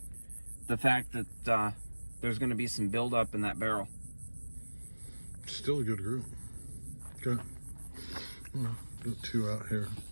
fact that there's going to be some buildup in that barrel. Still a good group. Got two out here.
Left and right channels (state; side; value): inverted; both; correlation -1.00